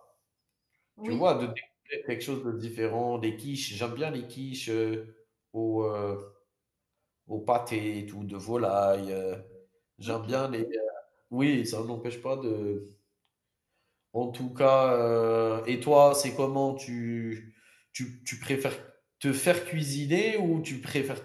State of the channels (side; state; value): both; identical; correlation 1.00